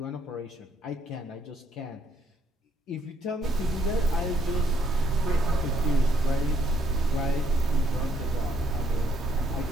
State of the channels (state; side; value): normal; both; correlation 0.70